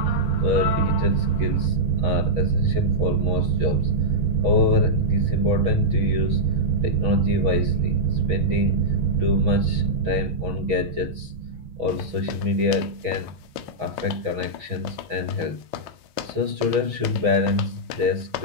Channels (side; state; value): left; late; 6.2 ms